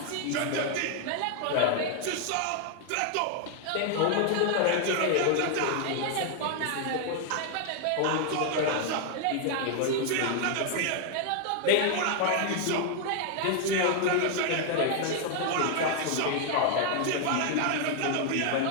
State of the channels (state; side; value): different; both; correlation 0.00